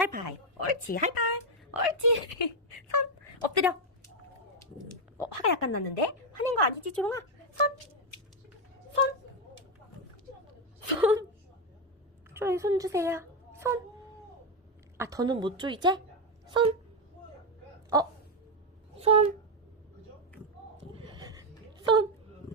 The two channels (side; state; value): both; normal; correlation 0.05